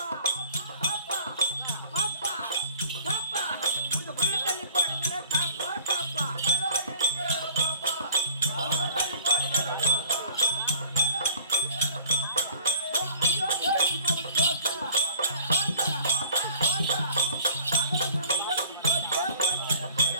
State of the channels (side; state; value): both; inverted; correlation -0.51